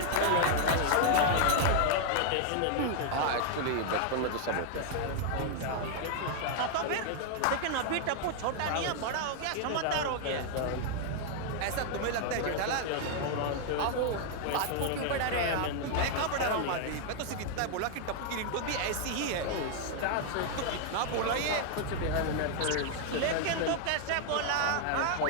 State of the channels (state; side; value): different; both; correlation 0.00